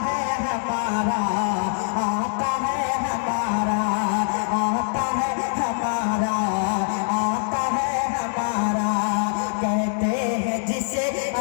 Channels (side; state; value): right; silent; 63 dB below the other